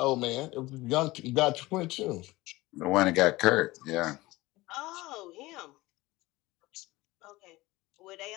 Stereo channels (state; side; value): quieter; right; 19.9 dB